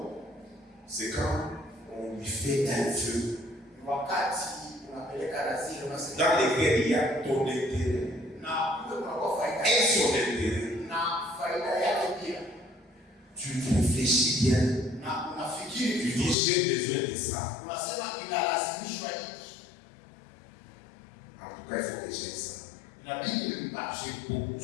c'est quand on lui fait un vœu dans lequel il y a ton intérêt et son intérêt. Tu réfléchis bien. Tu dis j'ai besoin de ça. En tout cas, il faut que j'aie ça. J'ai beaucoup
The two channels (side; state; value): right; drops out; at 16.4 s